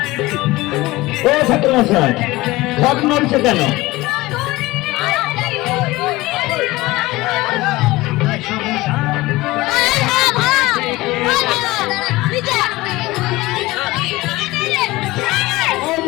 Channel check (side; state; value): right; quieter; 19.7 dB